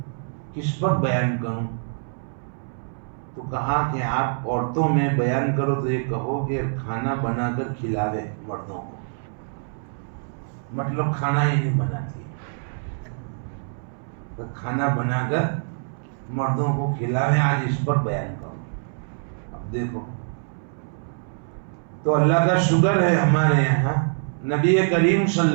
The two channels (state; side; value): silent; left; 62 dB below the other